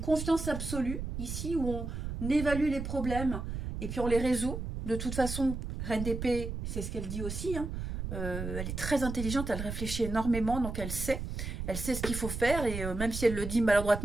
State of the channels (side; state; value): right; noise; rumble, 5 dB below the sound